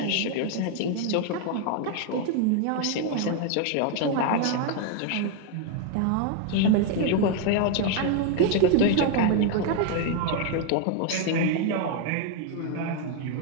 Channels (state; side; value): different; both; correlation 0.01